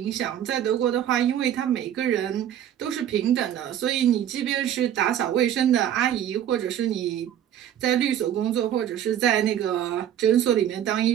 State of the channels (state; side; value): quieter; left; 10.4 dB